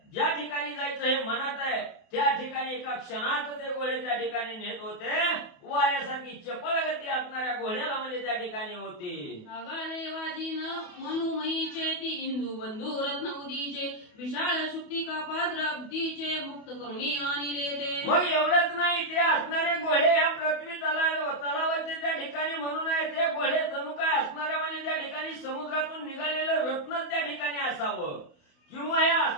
ज्या ठिकाणी जायचं हे मनात आहे, त्या ठिकाणी एका क्षणात ते घोडे त्या ठिकाणी नेत होते. वाऱ्यासारखी चपळ गती असणाऱ्या घोड्याला म्हणजे त्या ठिकाणी होती. आगारे वाजीन मनुमयीचे ती इंदू बंधू रत्न उदीचे विशाळ शुक्तिका पात्र अब्दीचे मुक्त करुणी आणले ते. मग एवढंच नाही, ते असणारे घोडे या पृथ्वी तलावाचे त्या ठिकाणी म्हणून आहे. ते घोडे जणू काय असणाऱ्या म्हणजे त्या ठिकाणी समुद्रातून निघालेलं रत्नच त्या ठिकाणी असावं, किंवा या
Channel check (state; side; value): late; right; 28 ms